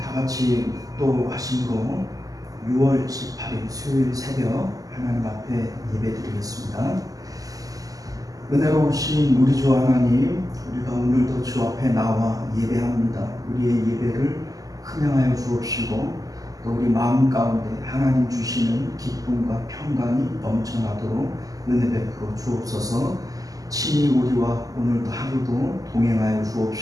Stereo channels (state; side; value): late; left; 0.17 ms